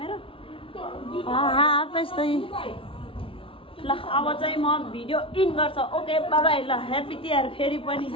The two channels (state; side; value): late; right; 0.26 ms